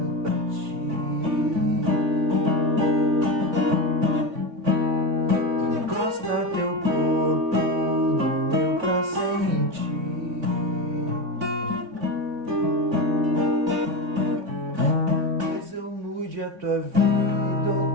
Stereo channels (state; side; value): late; left; 3.8 ms